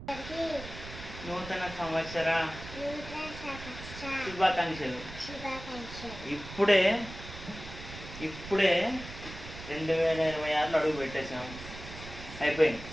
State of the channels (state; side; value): noise; right; rumble, 13 dB below the sound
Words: నూతన సంవత్సర శుభాకాంక్షలు. ఇప్పుడే 2026లో అడుగు పెట్టేసాము. అయిపోయింది.